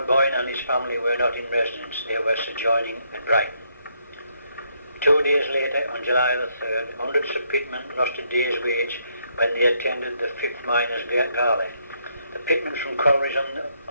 Boyne and his family were not in residence. They were sojourning at Brighton. 2 days later, on July the 3rd, hundreds of pitmen lost a day's wage when they attended the 5th Miners' Gala. The pitmen from collieries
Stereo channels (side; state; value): both; inverted; correlation -0.74